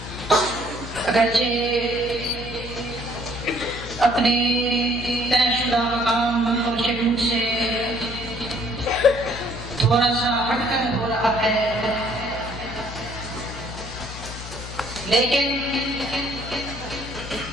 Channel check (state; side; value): noise; left; hum, 11 dB below the sound